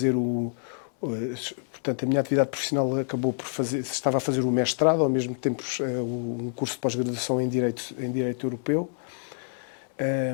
Portanto, a minha atividade profissional acabou por fazer... Estava a fazer o mestrado, ao mesmo tempo um curso de pós-graduação em Direito Europeu.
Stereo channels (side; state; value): right; silent; digital silence